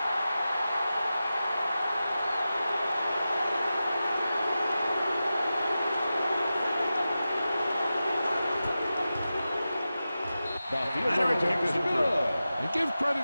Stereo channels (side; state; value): both; inverted; correlation -0.93